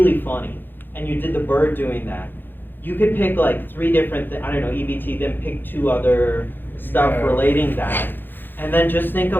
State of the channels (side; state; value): right; late; 0.096 ms